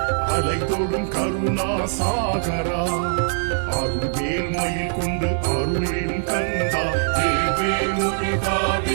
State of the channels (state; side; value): silent; left; digital silence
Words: அலை தொடும் கருணா சாகரா அருள்வேல் மயில் கொண்டு அருளிடும் கந்தா வேல் முருகா